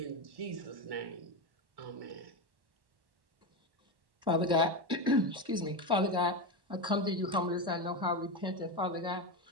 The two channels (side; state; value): left; late; 1.1 ms